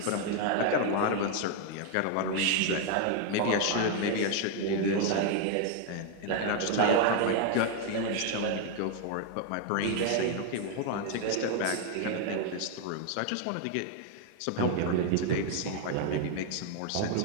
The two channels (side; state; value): both; different; correlation 0.01